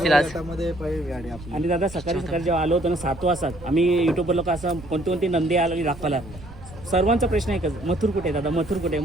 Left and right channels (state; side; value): noise; right; rumble, 17 dB below the sound